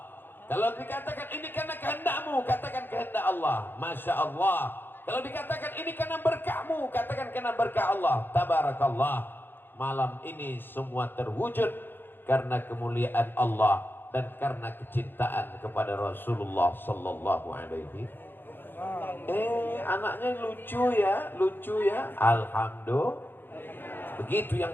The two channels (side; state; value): right; late; 0.098 ms